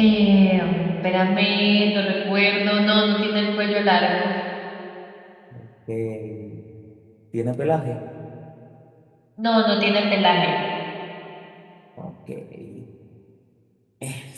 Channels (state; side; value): identical; both; correlation 1.00